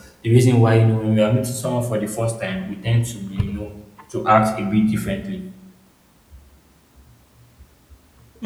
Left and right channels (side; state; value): both; identical; correlation 1.00